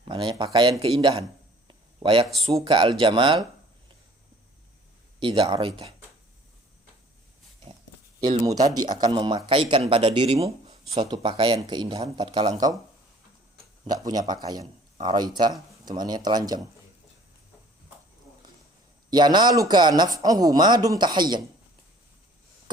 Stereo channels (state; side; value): normal; both; correlation 0.54